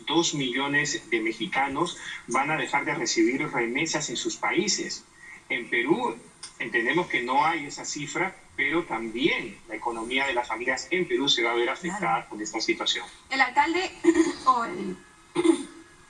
2 millones de mexicanos van a dejar de recibir remesas en sus países. En Perú entendemos que no hay esa cifra, pero también la economía de las familias en Perú se va a ver afectada por esta situación. El alcalde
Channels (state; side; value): identical; both; correlation 1.00